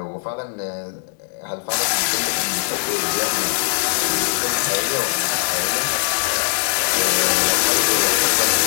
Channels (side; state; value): right; silent; digital silence